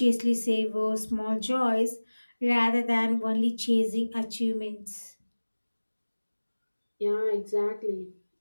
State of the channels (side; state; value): both; inverted; correlation -1.00